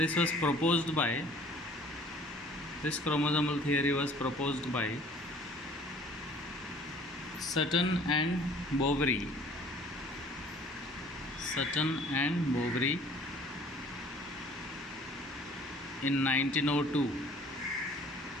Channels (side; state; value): both; normal; correlation 0.52